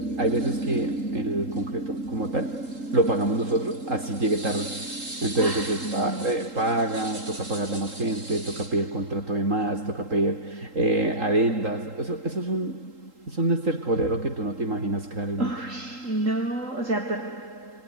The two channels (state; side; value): late; left; 3.8 ms